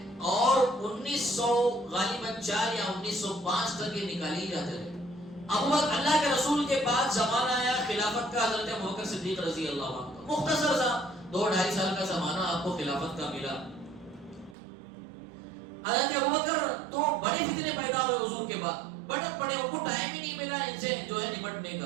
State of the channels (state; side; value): drops out; left; at 14.6 s